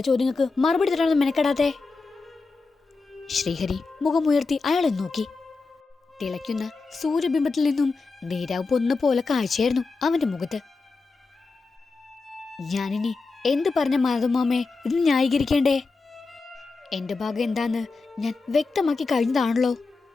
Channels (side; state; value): right; quieter; 4.1 dB